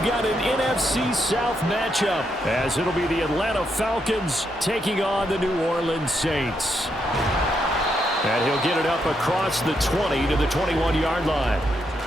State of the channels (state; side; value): normal; both; correlation 0.79